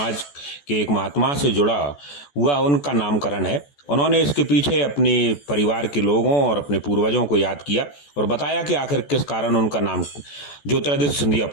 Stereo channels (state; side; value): late; right; 14 ms